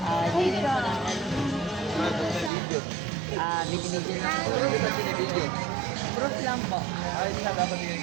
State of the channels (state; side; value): drops out; left; at 2.5 s